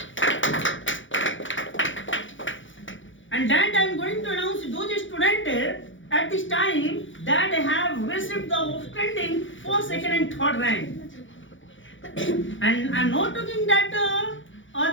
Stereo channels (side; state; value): right; late; 0.56 ms